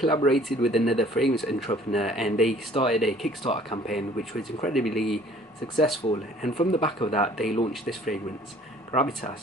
with another fragrance entrepreneur and they started a Kickstarter campaign which was incredibly successful, and from the back of that they launched this fragrance,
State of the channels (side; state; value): both; normal; correlation 0.54